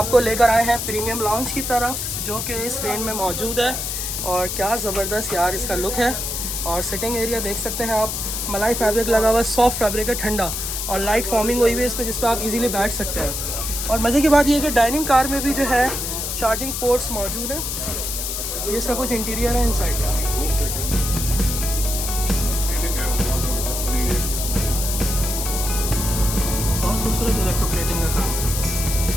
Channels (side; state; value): left; noise; hiss, 3 dB below the sound